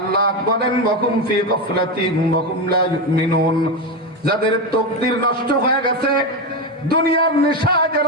বলেন, ওয়াহুম ফি গাফলাতিন ওয়াহুম লা ইউমিনুন, যাদের তাকদীর নষ্ট হয়ে গেছে, দুনিয়ার নেশা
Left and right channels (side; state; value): both; normal; correlation 0.13